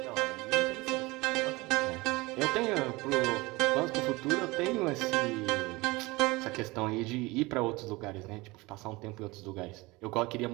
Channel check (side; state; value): left; quieter; 22.5 dB